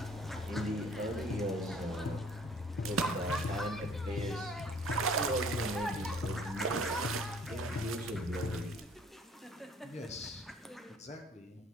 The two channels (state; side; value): normal; both; correlation 0.55